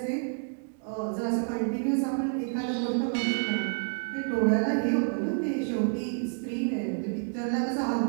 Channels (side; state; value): left; silent; 59 dB below the other